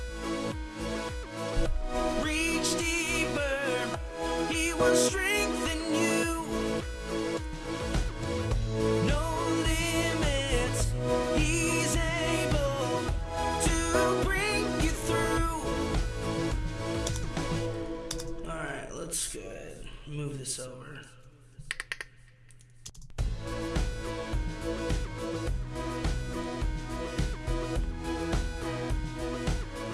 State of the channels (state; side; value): identical; both; correlation 1.00